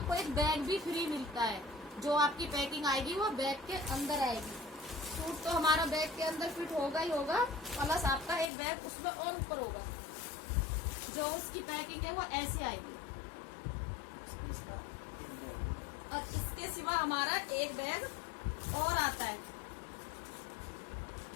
एक बैग भी फ्री मिलता है, जो आपकी पैकिंग आएगी वो बैग के अंदर आएगी। सूट तो हमारा बैग के अंदर फिट होगा ही होगा, प्लस आपका एक बैग उसमें और ऊपर होगा। जो उसकी पैकिंग है वो ऐसे आएगी। और इसके सिवा हमारा एक बैग और आता है।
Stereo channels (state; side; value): drops out; right; at 8.5 s